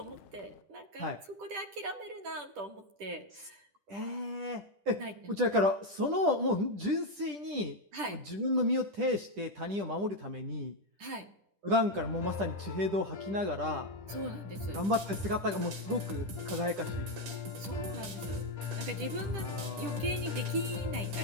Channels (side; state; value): left; late; 10 ms